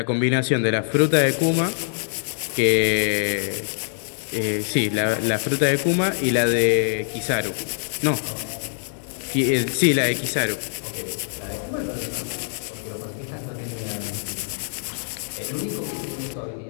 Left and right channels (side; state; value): right; silent; digital silence